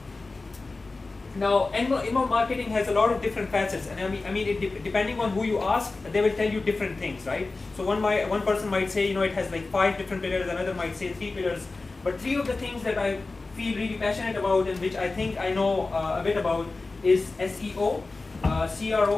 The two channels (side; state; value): right; quieter; 3.6 dB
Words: Now, inbound marketing has a lot of different facets, and depending on who you ask, they will tell you different things, right? So one person might say, it has like 5 different pillars, another might say 3 pillars, but 3 of the things that I feel really passionate about and which I think I know a bit about is SEO,